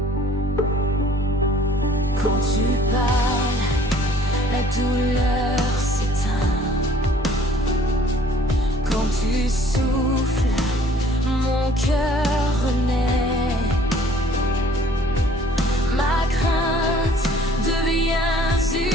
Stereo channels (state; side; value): normal; both; correlation 0.56